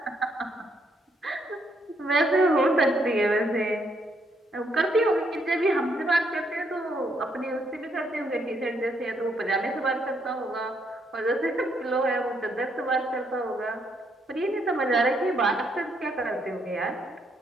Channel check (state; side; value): normal; both; correlation 0.73